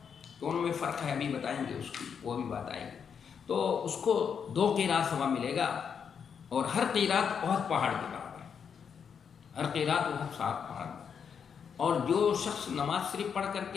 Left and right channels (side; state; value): right; quieter; 7.0 dB